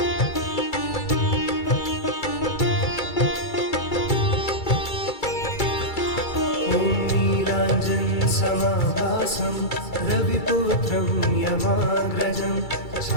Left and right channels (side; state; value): right; late; 2.3 ms